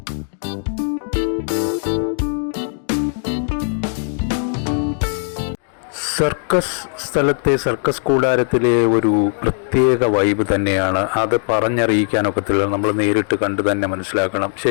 സർക്കസ് സ്ഥലത്തെ സർക്കസ് കൂടാരത്തിലെ ഒരു പ്രത്യേക വൈബ് തന്നെയാണ്. അത് പറഞ്ഞറിയിക്കാനൊക്കത്തില്ല, നമ്മൾ നേരിട്ട് കണ്ട് തന്നെ മനസ്സിലാക്കണം.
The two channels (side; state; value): right; silent; 66 dB below the other